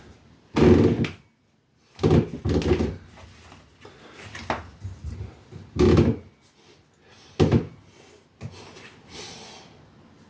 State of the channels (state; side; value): identical; both; correlation 1.00